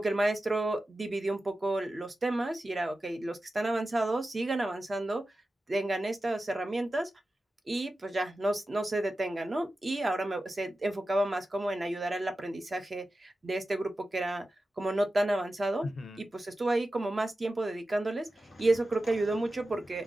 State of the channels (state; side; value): normal; both; correlation 0.93